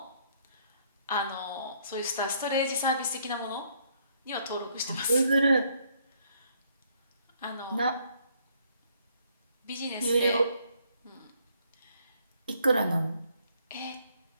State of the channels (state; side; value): inverted; both; correlation -0.68